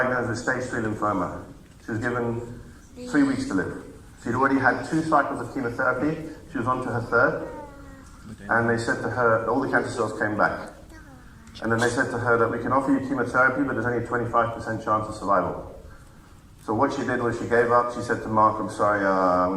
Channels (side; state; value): both; identical; correlation 1.00